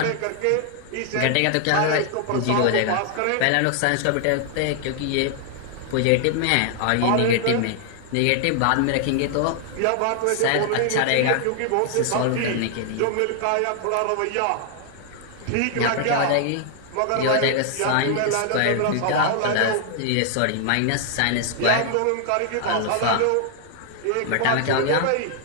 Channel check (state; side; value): different; both; correlation 0.00